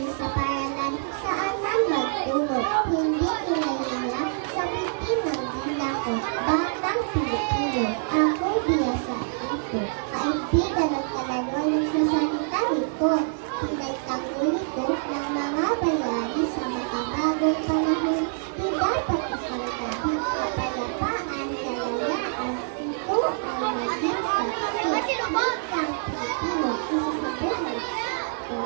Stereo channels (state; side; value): silent; left; 61 dB below the other